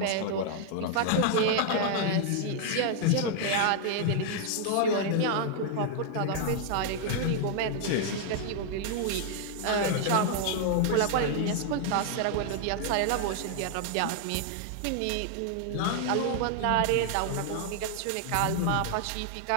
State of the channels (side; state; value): both; different; correlation 0.00